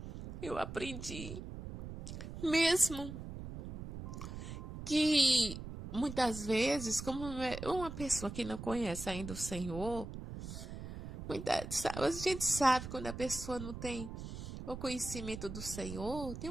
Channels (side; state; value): right; noise; rumble, 9 dB below the sound